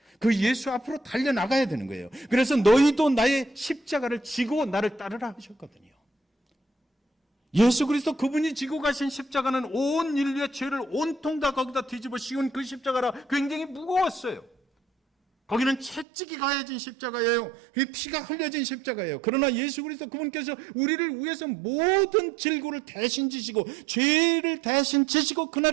그 예수 앞으로 달려나가야 되는 거예요. 그래서 너희도 나의 십자가를 지고 나를 따르라 하셨거든요. 예수 그리스도 그분이 지고 가신 십자가는 온 인류의 죄를 온통 다 거기다 뒤집어 씌운 그 십자가라 굉장히 무거웠어요. 거기는 채찍이 가해진 십자가예요. 피가 흘려진 십자가예요. 그러나 예수 그리스도 그분께서 우리를 위해서 모든 질고를 대신 지시고 죄를 대신 지시고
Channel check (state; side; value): drops out; left; at 16.1 s